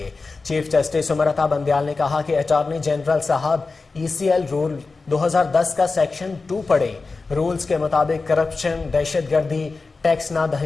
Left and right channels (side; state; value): right; quieter; 4.0 dB